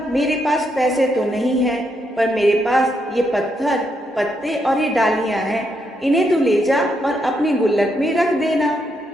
मेरे पास पैसे तो नहीं है, पर मेरे पास ये पत्थर पत्ते और ये डालियां हैं, इन्हें तू ले जा और अपनी गुल्लक में रख देना।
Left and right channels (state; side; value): normal; both; correlation 0.79